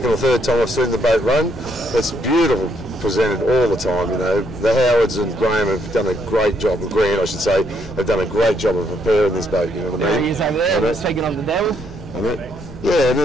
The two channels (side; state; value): left; noise; rumble, 16 dB below the sound